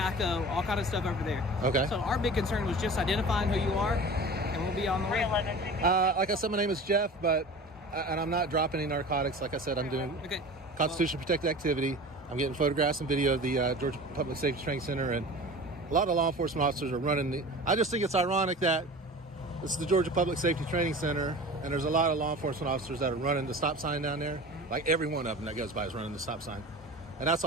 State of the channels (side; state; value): both; normal; correlation 0.37